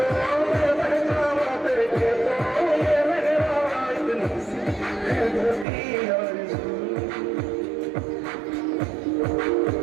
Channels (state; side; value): drops out; left; at 5.7 s